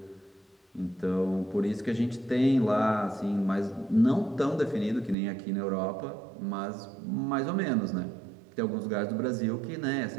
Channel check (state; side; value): drops out; left; at 5.2 s